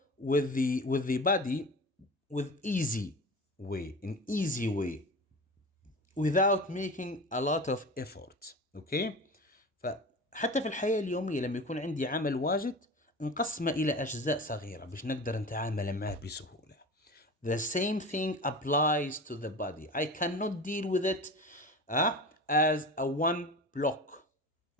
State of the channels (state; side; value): normal; both; correlation 0.32